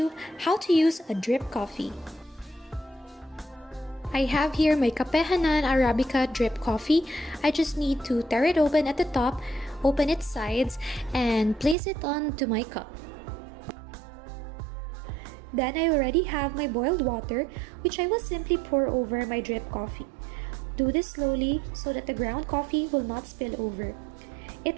how to use a drip coffee. I have here my Kapehanan Arabica drip coffee. I just need to tear it open at the top, open its sides, and place it onto my cup. Then I already have my boiled water, which I will simply pour over my drip coffee. Do this slowly so that the ground coffee will not spill over.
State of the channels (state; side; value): drops out; left; at 11.8 s